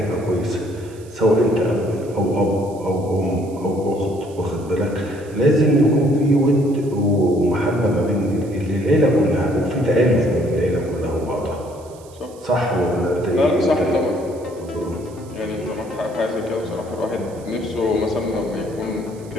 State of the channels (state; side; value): noise; right; hiss, 25 dB below the sound